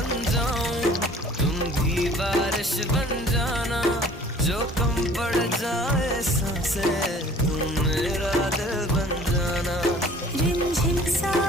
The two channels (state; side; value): normal; both; correlation 0.51